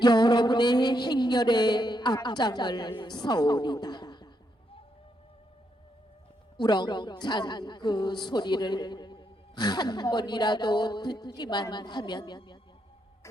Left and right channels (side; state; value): both; normal; correlation 0.79